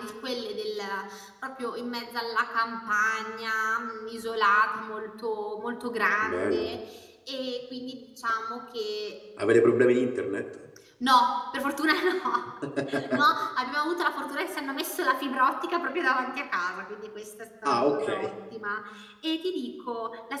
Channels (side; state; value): both; identical; correlation 1.00